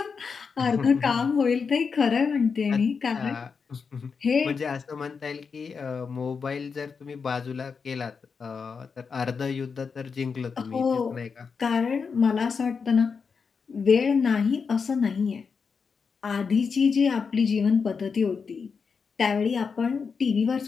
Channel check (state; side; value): quieter; right; 5.6 dB